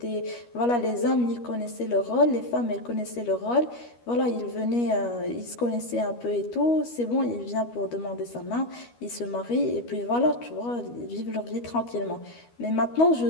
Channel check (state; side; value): late; right; 12 ms